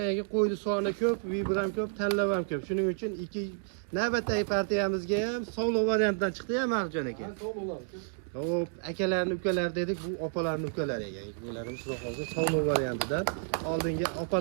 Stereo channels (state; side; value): silent; left; digital silence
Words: qo'ydi soni ko'p, V1 ham ko'p, tanlab ham ko'p. Shuning uchun ikki navbatdagi partiyamizga ham sog'liq variantidan chiqdi ya Marjon aka. Hop, akalarni ukalar dedik, bu opalarni ukalari ekan. Bularimiz xudo xolsa sog'liq variantidan. Oldingi